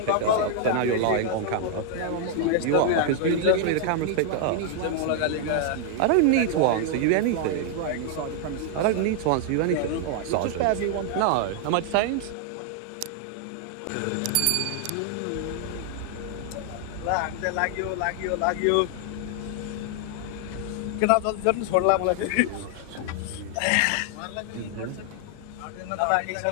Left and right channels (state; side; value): different; both; correlation 0.00